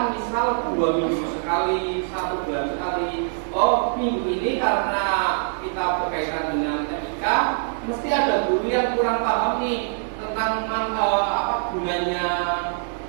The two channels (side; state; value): left; silent; digital silence